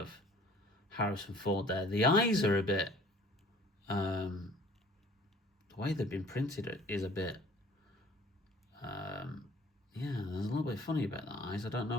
Harrison Ford there. The eyes are a bit, the way they've been printed is a bit, yeah, there's a little bit funny about the eyes. I don't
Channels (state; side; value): normal; both; correlation 0.51